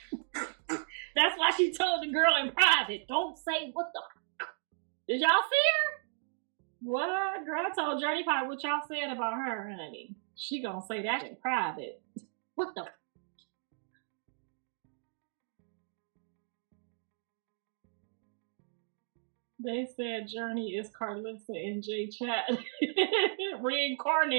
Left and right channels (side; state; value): left; silent; digital silence